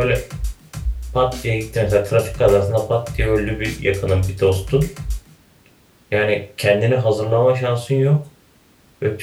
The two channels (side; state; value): both; identical; correlation 1.00